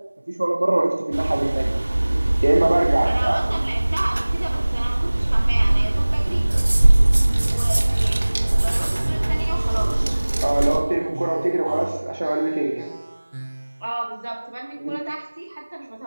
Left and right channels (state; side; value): inverted; both; correlation -1.00